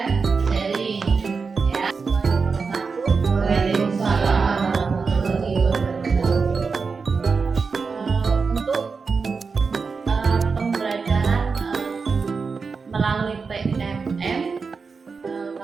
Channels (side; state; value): left; quieter; 4.9 dB